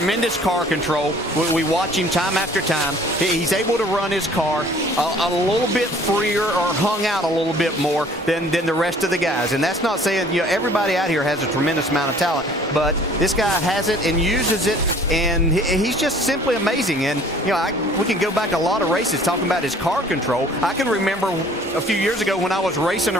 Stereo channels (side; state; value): both; normal; correlation 0.53